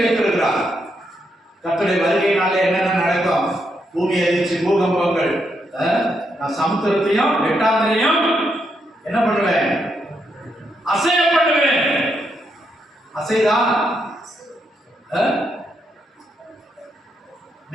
வைத்திருக்கிறார். கர்த்தருடைய வருகையினாலே என்னென்ன நடக்கும்? பூமி அதிர்ச்சி, பூகம்பங்கள். நான் சமுத்திரத்தையும் வெட்டாந்தரையும் என்ன பண்ணுவேன்? அசைய பண்ணுவேன். அசைதா?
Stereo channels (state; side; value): normal; both; correlation 0.79